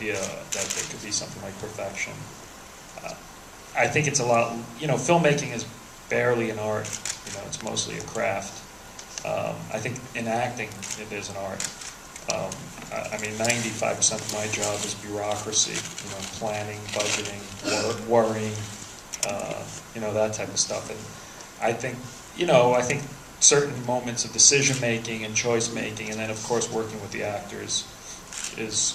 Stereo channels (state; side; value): identical; both; correlation 1.00